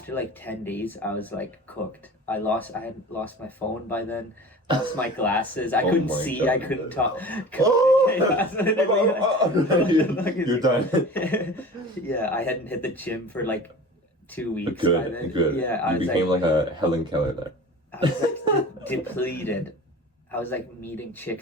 like 10 days, I was like cooked. I had lost my phone by then, lost my glasses. I couldn't see, God. I couldn't talk. You're done. Yeah, I hadn't hit the gym for like 2 weeks by then. Good. Yeah, you became like a Helen Keller there. I was like depleted. I was like meeting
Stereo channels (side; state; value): both; normal; correlation 0.38